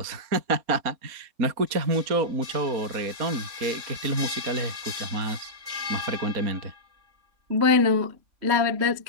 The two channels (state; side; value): late; left; 3.6 ms